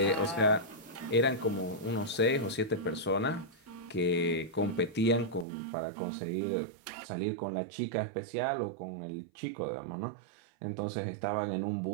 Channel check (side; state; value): left; drops out; at 5.5 s